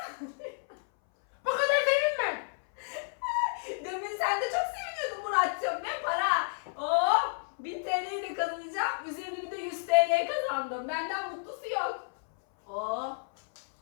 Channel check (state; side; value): silent; right; 57 dB below the other